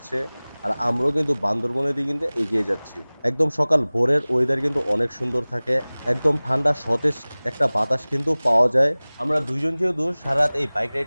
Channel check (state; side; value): inverted; both; correlation -1.00